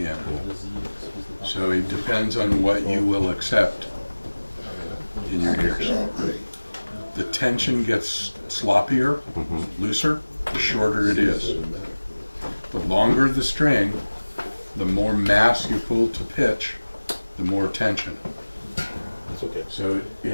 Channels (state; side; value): inverted; both; correlation -1.00